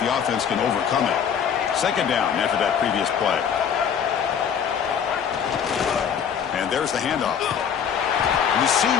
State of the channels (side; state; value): right; quieter; 7.7 dB